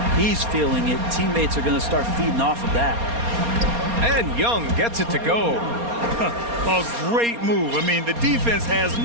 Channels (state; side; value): late; left; 4.3 ms